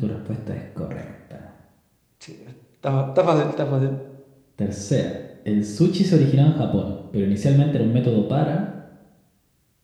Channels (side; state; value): both; identical; correlation 1.00